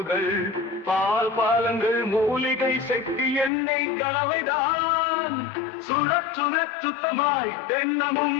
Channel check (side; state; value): right; drops out; at 3.5 s